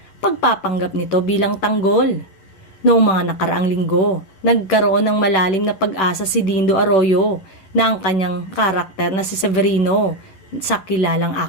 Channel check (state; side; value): late; right; 10 ms